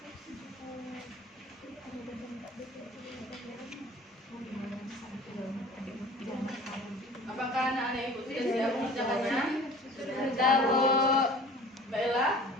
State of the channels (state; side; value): normal; both; correlation 0.45